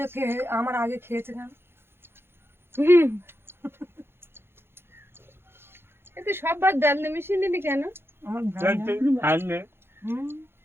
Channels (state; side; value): late; left; 0.11 ms